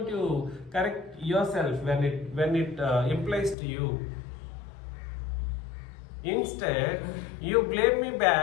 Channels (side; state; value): right; drops out; at 3.6 s